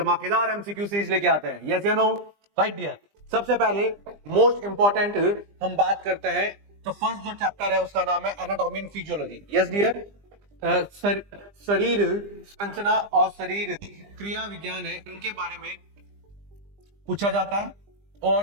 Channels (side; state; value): left; late; 20 ms